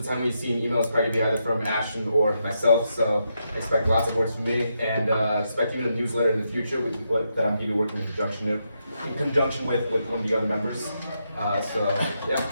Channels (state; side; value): inverted; both; correlation -0.82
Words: the time we see emails probably be either from Ashton or myself. So expect lots of words from me, and expect even a newsletter in the future that I'm going to be working in conjunction with one of the other members. So yeah.